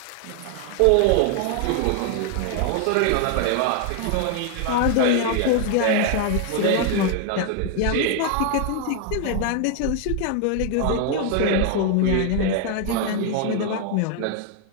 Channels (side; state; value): both; different; correlation 0.00